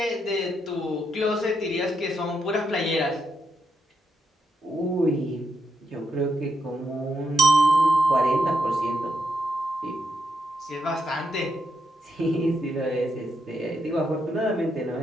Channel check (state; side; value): normal; both; correlation 0.81